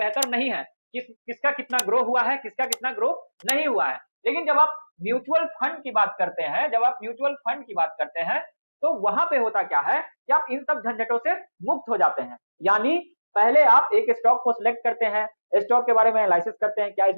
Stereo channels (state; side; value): inverted; both; correlation -1.00